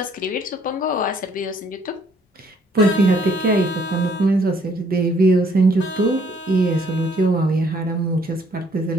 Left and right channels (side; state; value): both; normal; correlation 0.64